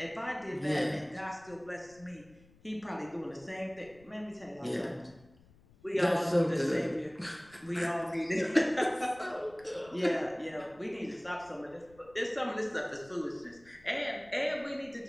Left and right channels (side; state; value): left; noise; rumble, 26 dB below the sound